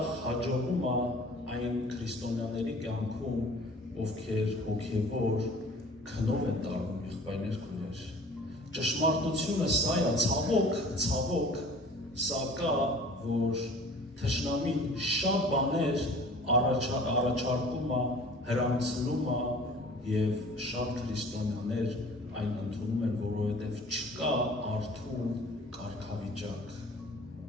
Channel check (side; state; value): both; normal; correlation 0.47